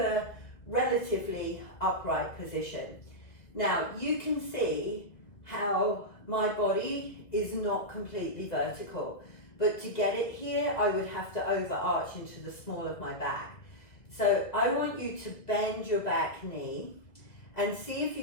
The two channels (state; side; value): late; right; 2.1 ms